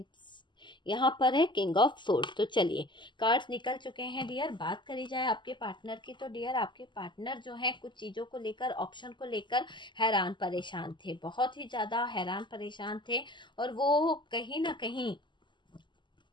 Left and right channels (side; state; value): right; late; 0.22 ms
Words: यहाँ पर है किंग ऑफ सोर्ड्स। तो चलिए कार्ड्स निकल चुके हैं डियर। बात करी जाए आपके पार्टनर की, तो डियर आपके पार्टनर जो है कुछ चीज़ों को लेकर, ऑप्शन को लेकर हैरान परेशान थे, बहुत ही ज़्यादा हैरान परेशान थे। और वो कहीं ना कहीं